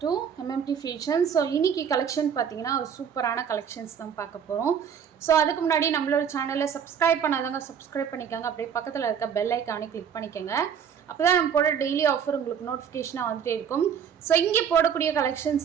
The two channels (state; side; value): quieter; left; 7.7 dB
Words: to MMT Fashion. So, இன்னைக்கு collection பார்த்தீங்கன்னா ஒரு சூப்பரான collections தான் பார்க்க போறோம். So, அதுக்கு முன்னாடி நம்மளோட சேனலை சப்ஸ்கிரைப் பண்ணாதவங்க சப்ஸ்கிரைப் பண்ணிக்கோங்க. அப்படியே பக்கத்தில் இருக்க பெல் ஐக்கானை கிளிக் பண்ணிக்கோங்க. அப்பதான் நம்ம போட டெய்லி ஆஃபர் உங்களுக்கு நோட்டிஃபிகேஷனாக வந்துட்டே இருக்கும். ஸோ இங்கே போடக்கூடிய